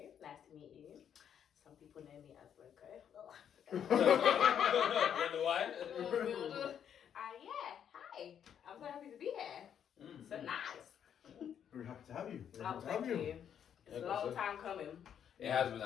Nice to meet you. Some people know me as Loco. Wonder why? Yeah, hi. I'm so happy to be here. So nice. Very happy to have you. Thank you. It's a long time coming. It has been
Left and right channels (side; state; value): right; quieter; 8.8 dB